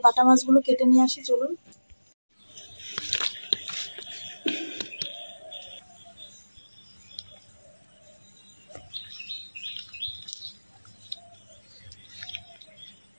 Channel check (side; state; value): both; inverted; correlation -1.00